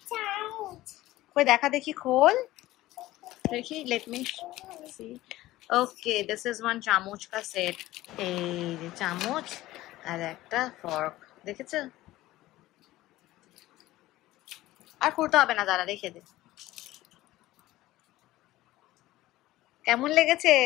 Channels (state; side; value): quieter; right; 16.6 dB